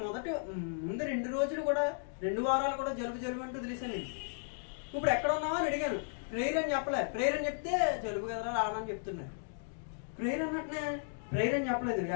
ముందు 2 రోజులు కూడా, 2 వారాలు కూడా జలుబు అంటూ తెలిసాను నేను. ఇప్పుడు ఎక్కడ ఉన్నావా అని అడిగాను. ప్రేయర్ అని చెప్పలే. ప్రేయర్ అని చెప్తే జలుబు కదరా రావని చెప్తున్నారు. ప్రేయర్ అన్నట్టునే ప్రేయర్ అని చెప్పలేదు.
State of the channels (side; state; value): right; silent; digital silence